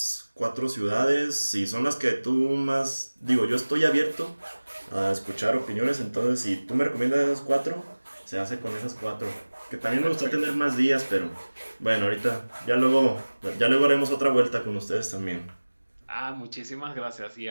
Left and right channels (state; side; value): inverted; both; correlation -1.00